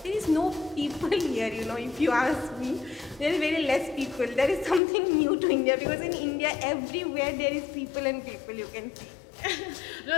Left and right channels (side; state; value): right; drops out; at 4.8 s